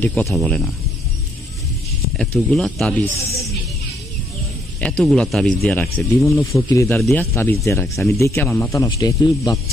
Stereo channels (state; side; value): normal; both; correlation 0.72